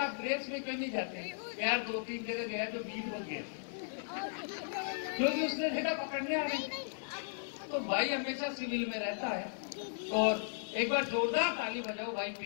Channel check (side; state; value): right; silent; 54 dB below the other